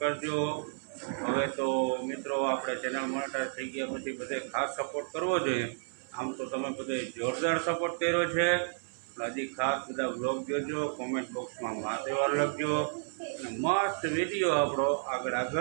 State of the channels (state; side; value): silent; left; 57 dB below the other